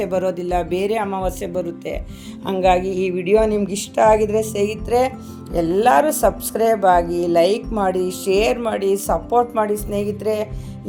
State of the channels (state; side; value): identical; both; correlation 1.00